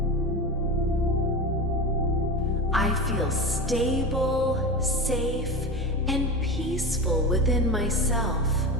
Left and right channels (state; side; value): noise; right; hum, 27 dB below the sound